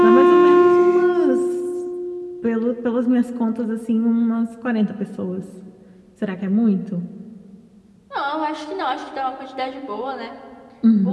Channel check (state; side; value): identical; both; correlation 1.00